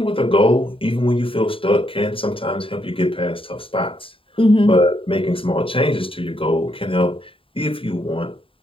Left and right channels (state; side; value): late; right; 0.26 ms